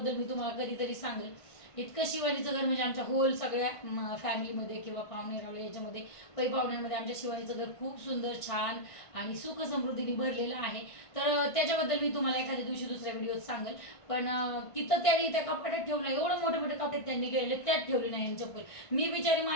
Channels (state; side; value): late; right; 1.5 ms